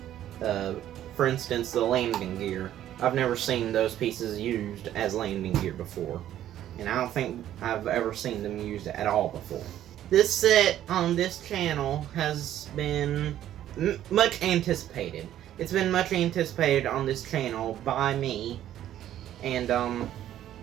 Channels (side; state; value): left; quieter; 11.9 dB